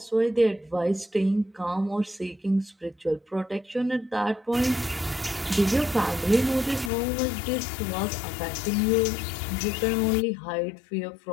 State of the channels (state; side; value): drops out; right; at 6.9 s